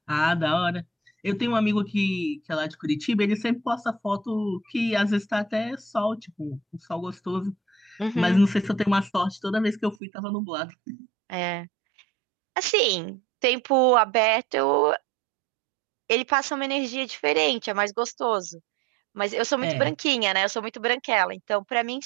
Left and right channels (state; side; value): drops out; left; at 10.0 s